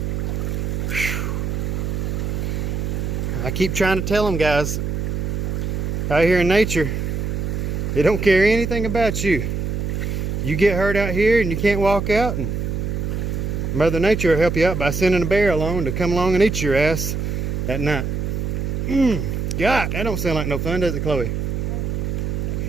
I keep trying to tell them, guys, out here in nature, they don't care anything about you. You get hurt out here and you can't walk out, and Mother Nature will help you out by sending a bear along to come along and eat your ass at night. God, that don't sound like no fun, does it, Chloe?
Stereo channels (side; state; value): right; noise; hum, 2 dB below the sound